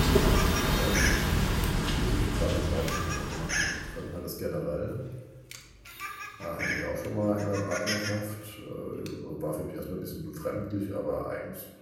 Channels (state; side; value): identical; both; correlation 1.00